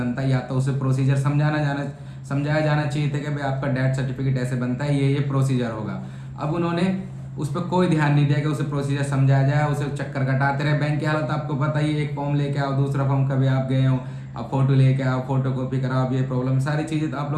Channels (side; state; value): both; identical; correlation 1.00